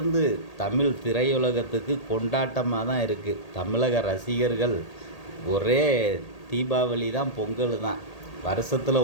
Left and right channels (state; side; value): late; right; 1.8 ms